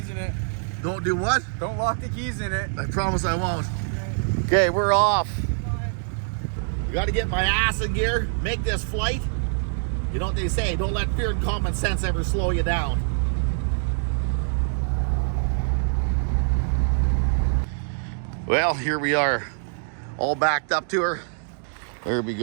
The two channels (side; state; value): left; silent; digital silence